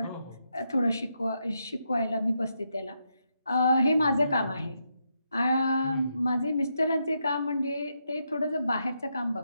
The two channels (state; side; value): inverted; both; correlation -0.81